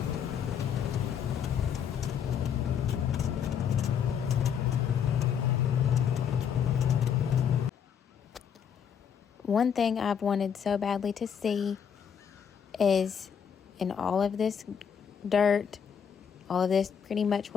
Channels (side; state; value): right; quieter; 7.8 dB